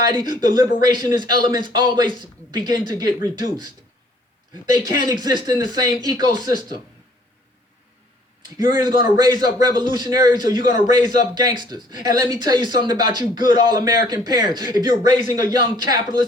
the liberationist elements always begin to get reduced. They can't exist in the same ecosystem. You're either going to raise up revolutionaries or you're going to raise up gangsters. And let me tell you something about you good all-American parents. If you're raising a young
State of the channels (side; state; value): both; normal; correlation 0.59